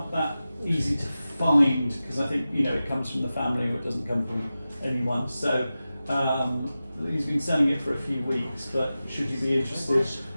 that easy to find, because I think it comes from the family, or it doesn't come from anyone. So he's been selling it for a few weeks, but should you be interested,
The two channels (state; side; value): inverted; both; correlation -0.94